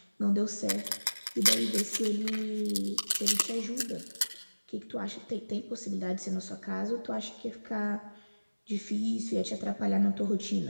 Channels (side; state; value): both; inverted; correlation -1.00